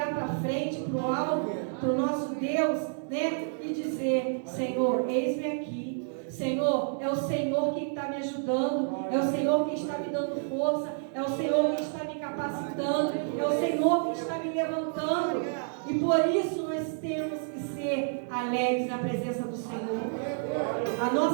para frente, para o alto, para o nosso Deus, e dizer: Senhor, eis-me aqui. Senhor, é o Senhor que está me ajudando, é o Senhor que está me dando força, é o Senhor que está me capacitando, é o Senhor que está me levantando. E por isso nós temos que ser alegres na presença do Senhor. A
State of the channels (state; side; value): silent; left; digital silence